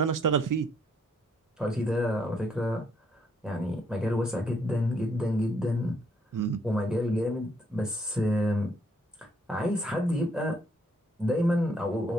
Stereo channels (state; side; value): normal; both; correlation 0.70